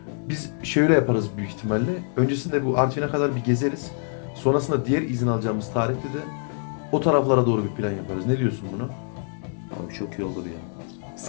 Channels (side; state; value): right; silent; digital silence